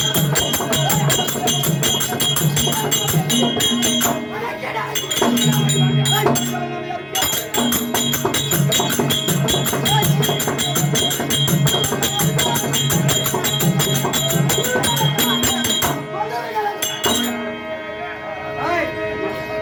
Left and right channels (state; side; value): identical; both; correlation 1.00